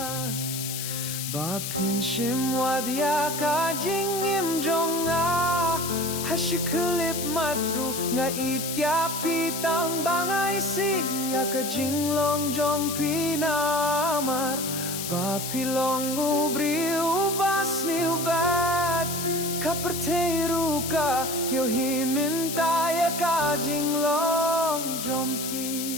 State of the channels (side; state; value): left; noise; hiss, 5 dB below the sound